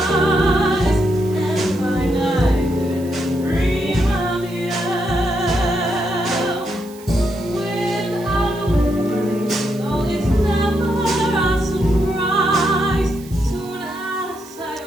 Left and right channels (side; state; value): right; noise; hiss, 21 dB below the sound